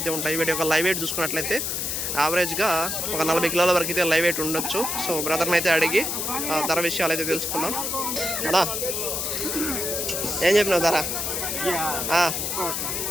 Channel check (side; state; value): left; noise; hiss, 1 dB below the sound